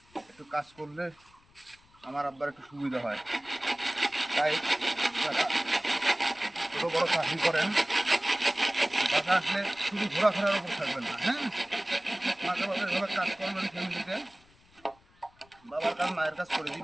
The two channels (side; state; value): left; noise; rumble, 30 dB below the sound